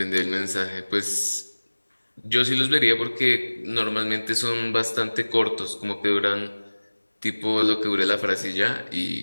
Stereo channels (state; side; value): inverted; both; correlation -1.00